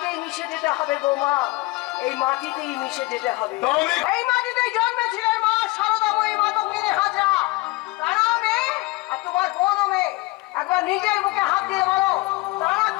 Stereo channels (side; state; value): right; quieter; 22.2 dB